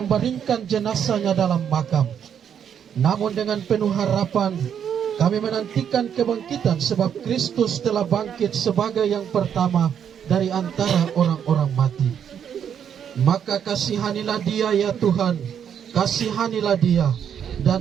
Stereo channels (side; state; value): left; quieter; 8.4 dB